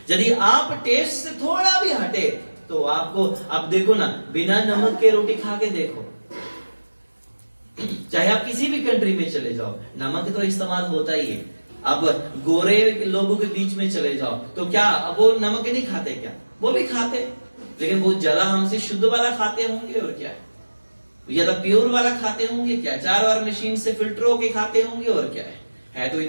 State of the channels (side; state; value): both; inverted; correlation -1.00